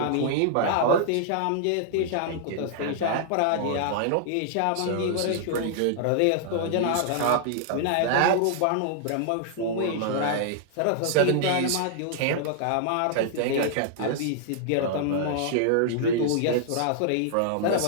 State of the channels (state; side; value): different; both; correlation -0.01